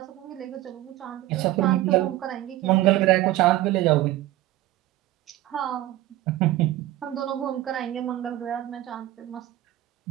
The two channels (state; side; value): quieter; left; 15.3 dB